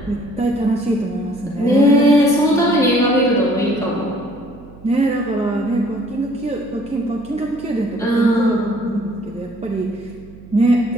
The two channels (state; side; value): noise; right; hum, 21 dB below the sound